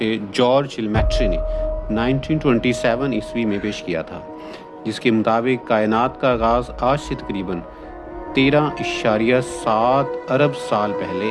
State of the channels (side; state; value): both; identical; correlation 1.00